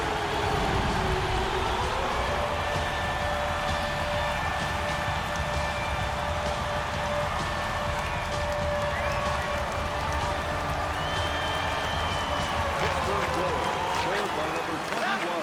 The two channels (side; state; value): both; identical; correlation 1.00